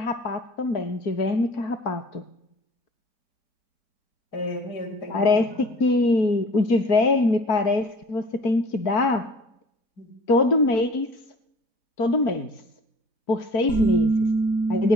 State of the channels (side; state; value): right; late; 4.5 ms